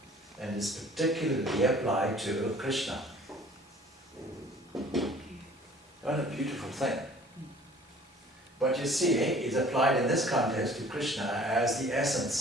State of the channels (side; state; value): both; normal; correlation 0.51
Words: and is particularly applied to Krishna. Okay. What a beautiful thing. But you see, it's applied in this context to Krishna as the